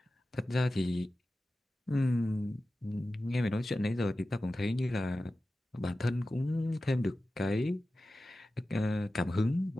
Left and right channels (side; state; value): both; normal; correlation 0.94